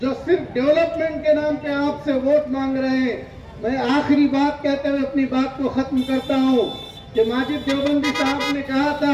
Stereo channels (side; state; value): both; identical; correlation 1.00